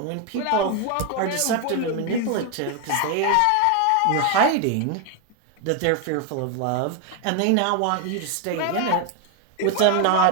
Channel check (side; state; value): both; different; correlation 0.01